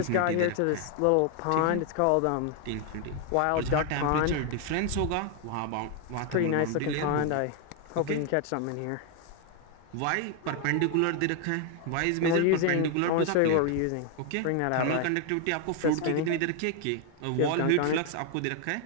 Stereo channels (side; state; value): both; different; correlation 0.00